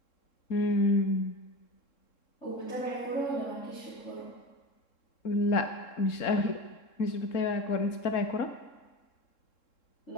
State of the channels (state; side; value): late; right; 3.7 ms